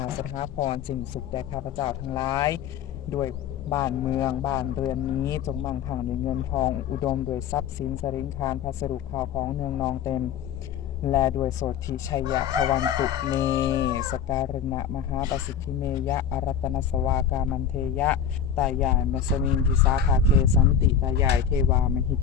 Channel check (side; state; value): right; quieter; 7.9 dB